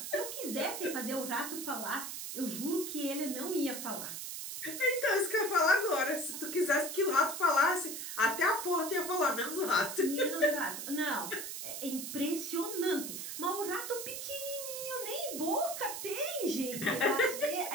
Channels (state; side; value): noise; right; hiss, 6 dB below the sound